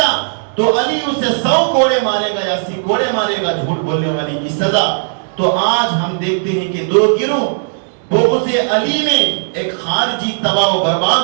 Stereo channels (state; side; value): silent; left; digital silence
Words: تو علی اسے 100 کوڑے مارے گا یا 80 کوڑے مارے گا, جھوٹ بولنے والی کی سزا. تو آج ہم دیکھتے ہیں کہ دو گروہ بغض علی میں ایک خارجی تباہ و